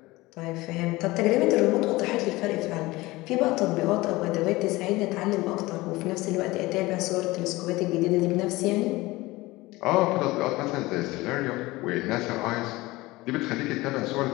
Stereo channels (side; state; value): right; quieter; 20.3 dB